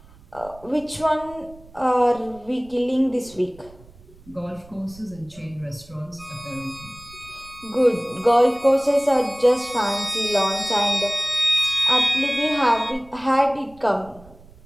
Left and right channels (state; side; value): noise; right; rumble, 23 dB below the sound